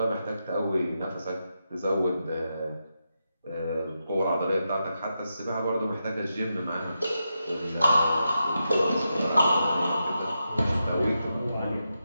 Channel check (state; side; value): inverted; both; correlation -0.87